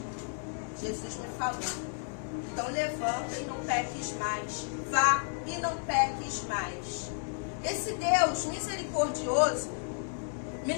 Jesus me falou: então levanta e não peques mais. Vá e não peques mais. Esse Deus misericordioso me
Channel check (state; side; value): silent; right; 56 dB below the other